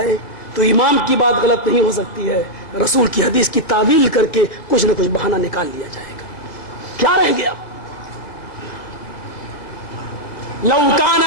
تو امام کی بات غلط نہیں ہو سکتی ہے، رسول کی حدیث کی تعویل کر کے کچھ نہ کچھ بہانہ نکال لیا جائے گا. کیا رہ گیا؟ لو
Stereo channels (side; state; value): right; late; 1.9 ms